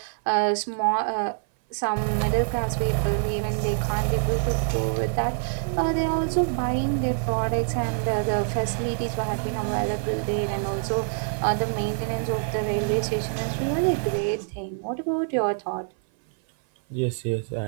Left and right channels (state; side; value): silent; left; 58 dB below the other